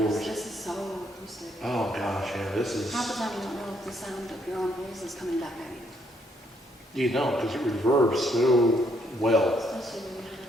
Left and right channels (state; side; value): normal; both; correlation 0.72